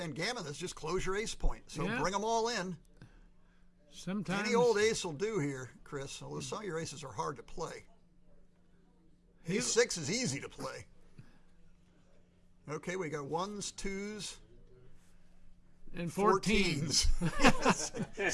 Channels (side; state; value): both; identical; correlation 1.00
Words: gammon this, just close your ace point. So Yeah. bring them all in. Sometimes Any old ace will do here, Chris, although some of your aces are hard to play. Ace 6 is easy to play. Okay, we got 1s, 2s, and 14s.